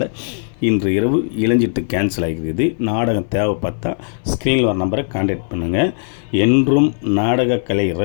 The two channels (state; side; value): silent; right; 61 dB below the other